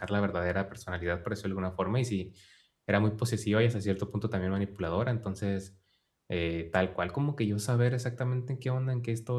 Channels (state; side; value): identical; both; correlation 1.00